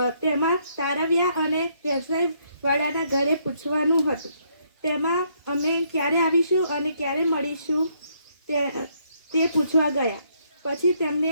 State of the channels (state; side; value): inverted; both; correlation -0.71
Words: તેમાં તારવ્યા અને વ્યવસાયવાળાના ઘરે પૂછવાનું હતું. તેમાં અમે ક્યારે આવીશું અને ક્યારે મળીશું તે પૂછવા ગયા. પછી